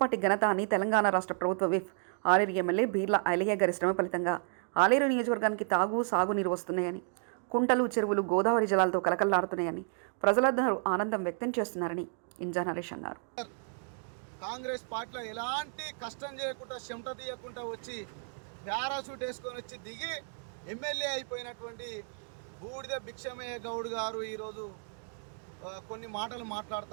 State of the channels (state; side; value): silent; left; 56 dB below the other